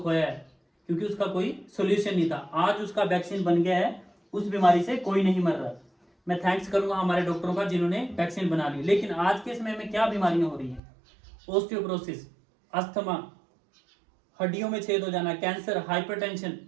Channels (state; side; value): drops out; left; at 10.8 s